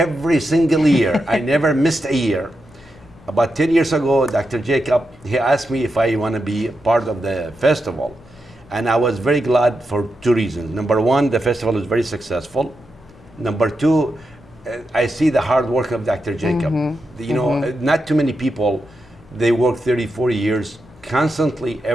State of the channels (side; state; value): left; noise; rumble, 26 dB below the sound